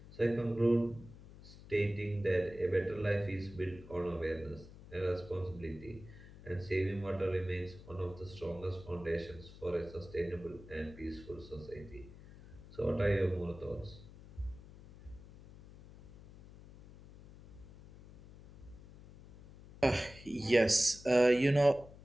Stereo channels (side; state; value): left; noise; hum, 18 dB below the sound